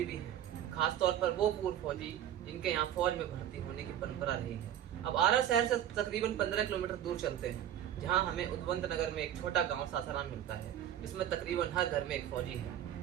भी हैं, खासतौर पर वो पूर्व फौजी जिनके यहाँ फौज में भर्ती होने की परंपरा रही है। अब आरा शहर से तकरीबन 15 किलोमीटर दूर चलते हैं, जहाँ हमें उद्वंत नगर में एक छोटा गांव सासाराम मिलता है, जिसमें तकरीबन हर घर में एक फौजी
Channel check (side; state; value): left; quieter; 10.9 dB